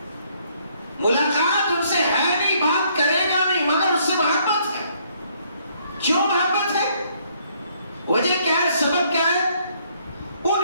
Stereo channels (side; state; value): both; inverted; correlation -0.67